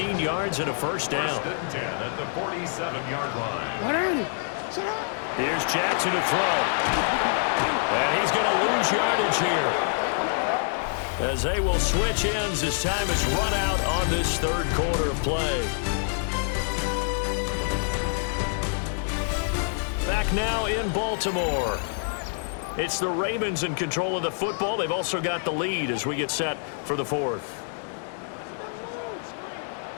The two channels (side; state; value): right; silent; digital silence